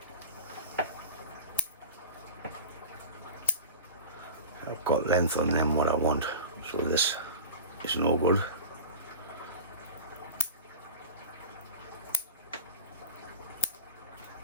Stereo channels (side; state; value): both; inverted; correlation -0.30